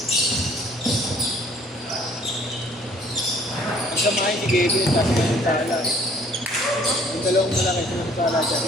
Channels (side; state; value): both; normal; correlation 0.58